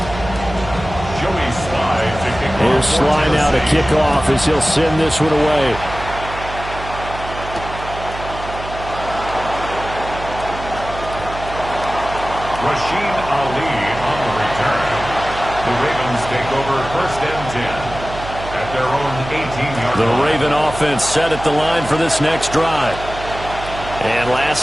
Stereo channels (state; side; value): noise; right; hum, 11 dB below the sound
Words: Sly now to kick off as he'll send this one away. Rasheen Ali on the return. The Ravens take over 1st and 10 at their own 18-yard line. The Raven offense set at the line for this next drive. And